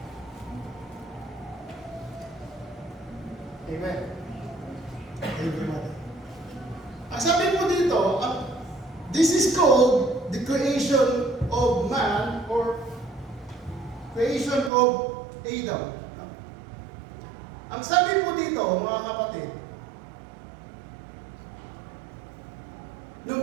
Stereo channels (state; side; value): drops out; left; at 14.7 s